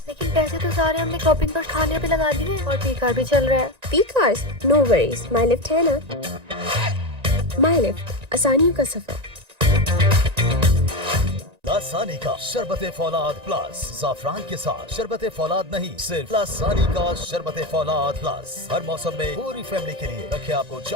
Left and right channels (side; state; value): left; late; 1.9 ms